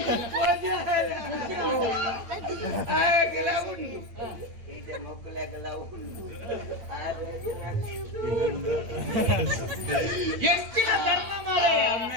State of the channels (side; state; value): left; late; 8.9 ms